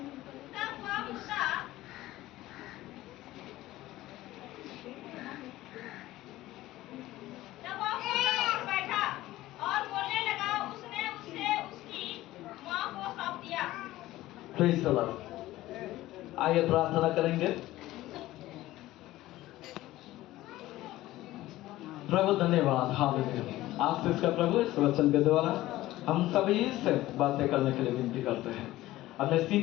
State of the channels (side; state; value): right; quieter; 16.4 dB